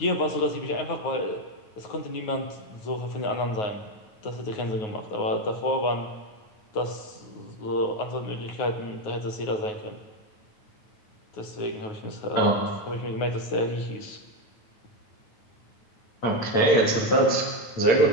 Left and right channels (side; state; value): right; late; 9.4 ms